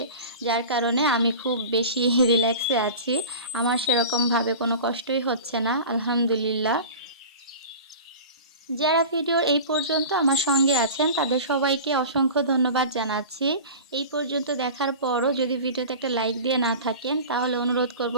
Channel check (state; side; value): inverted; both; correlation -0.35